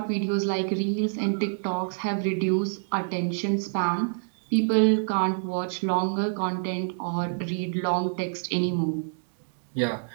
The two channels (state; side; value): silent; left; digital silence